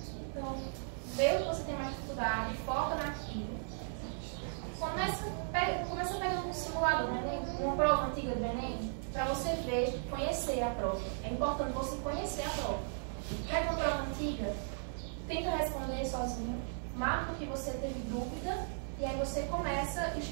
Então, vê o que você tem mais dificuldade, foca naquilo. Começa pegando um simulador, uma prova antiga do Enem, para você ver, conhecer a prova. É importante você conhecer a prova. Pega uma prova antiga, tenta responder sozinho, marca o que você teve dúvida, e aí você começa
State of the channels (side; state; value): left; silent; digital silence